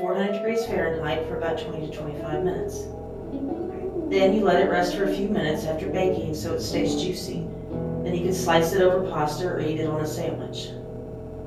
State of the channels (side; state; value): both; identical; correlation 1.00